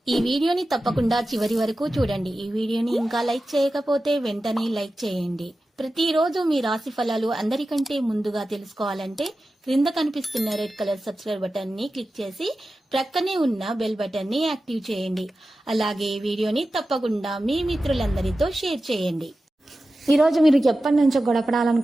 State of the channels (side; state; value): both; normal; correlation 0.94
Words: ఈ వీడియోని తప్పకుండా చివరి వరకు చూడండి. ఈ వీడియోని ఇంకా లైక్ చేయకపోతే వెంటనే లైక్ చేయండి. ప్రతిరోజు మీ రాశి ఫలాలు అందరికంటే ముందుగా తెలుసుకోవాలంటే క్రింద కనిపిస్తున్న రెడ్ కలర్ సబ్స్క్రైబ్ బటన్ ని క్లిక్ చేసి ప్రక్కనే ఉన్న బెల్ బటన్ ని యాక్టివ్ చేయండి. అలాగే వీడియోని తప్పకుండా మీ మిత్రులందరితో షేర్ చేయండి. ఈ రోజు మీరు ఎప్పటి నుంచో